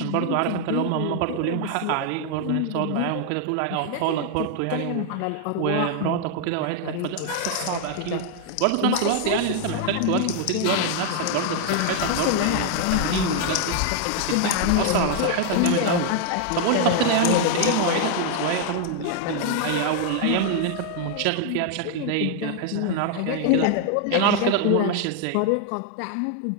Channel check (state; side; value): different; both; correlation 0.00